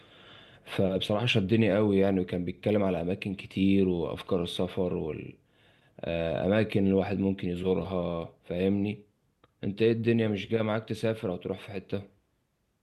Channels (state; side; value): identical; both; correlation 1.00